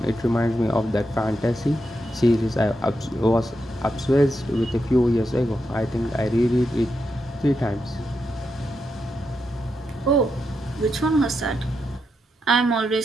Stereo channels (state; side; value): normal; both; correlation 0.85